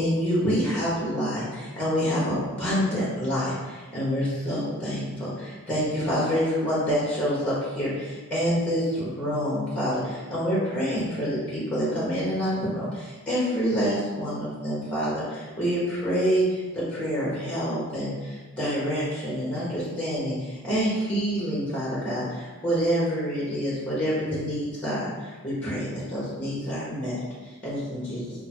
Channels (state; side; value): normal; both; correlation 0.53